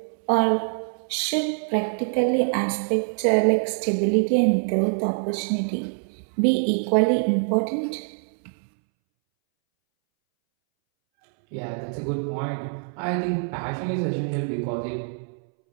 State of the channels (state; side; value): silent; left; 62 dB below the other